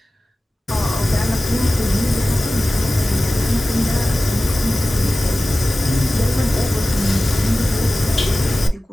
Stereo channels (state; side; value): normal; both; correlation 0.96